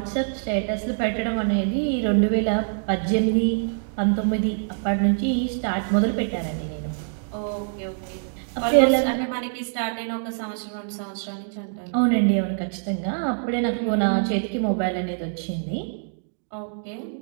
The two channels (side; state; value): left; silent; digital silence